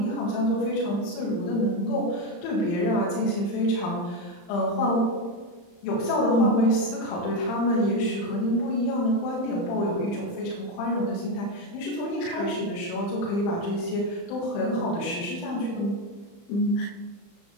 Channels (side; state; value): right; late; 35 ms